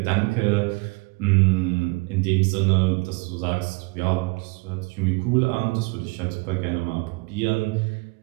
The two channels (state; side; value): quieter; left; 28.7 dB